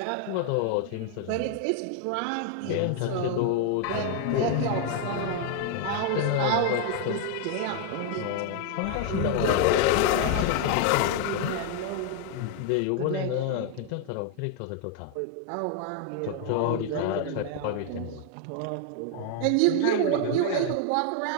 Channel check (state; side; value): different; both; correlation 0.00